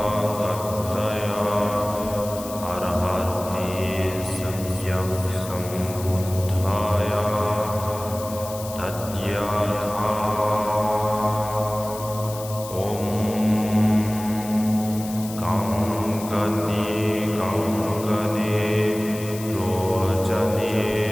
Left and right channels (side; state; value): left; noise; hiss, 13 dB below the sound